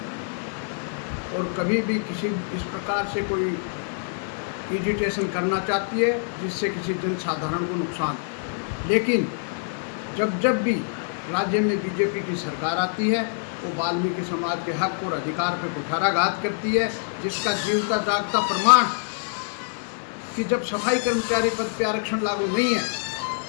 और कभी भी किसी इस प्रकार से कोई एजिटेशन करना चाहती है जिससे किसी जन साधारण को नुकसान। लेकिन जब भी राज्य में बीजेपी की सरकार आती है वो वाल्मीकि समाज के हक और अधिकार पर कुठाराघात करती है, जिसका जीवता जागता प्रमाण कि जब सफाई कर्मचारी पद पर आरक्षण लागू नहीं है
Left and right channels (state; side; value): silent; right; digital silence